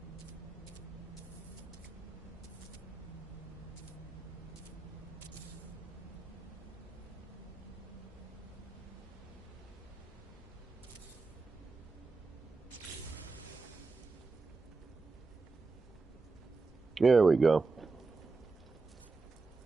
There we go.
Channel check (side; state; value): left; quieter; 4.0 dB